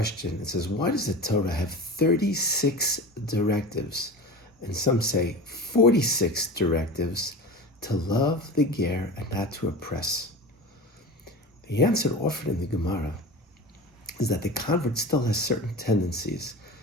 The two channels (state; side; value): normal; both; correlation 0.32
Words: It says, why does the Torah have 36 directives, and some say 46 directives, to love the Ger and not to oppress? The answer offered in the Gemara is that the convert still has certain tendencies,